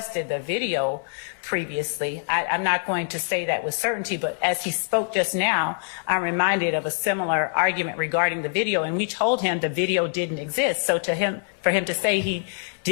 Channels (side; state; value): right; silent; digital silence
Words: the video previously. I'm not going to say that with certainty, but as he spoke just now, I'm reminded of a similar argument regarding the video, and we told him the video didn't exist. So for him to say he